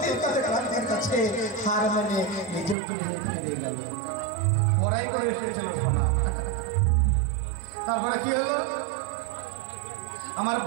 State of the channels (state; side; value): drops out; left; at 2.8 s